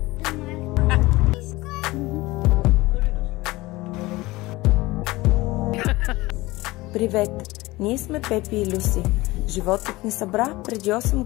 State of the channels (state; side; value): quieter; right; 20.2 dB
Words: Привет! Ние сме Пепи и Люси. Животът ни събра преди 8